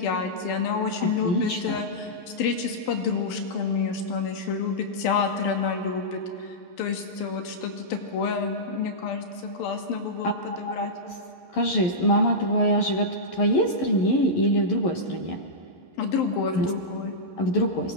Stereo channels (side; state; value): right; late; 12 ms